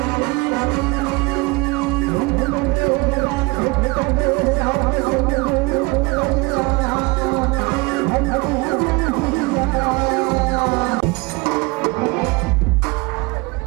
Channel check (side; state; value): left; quieter; 26.0 dB